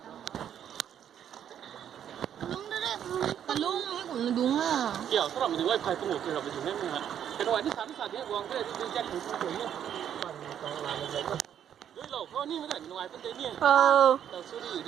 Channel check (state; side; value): quieter; left; 9.5 dB